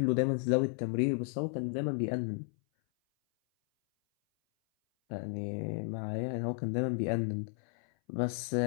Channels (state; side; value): silent; right; 56 dB below the other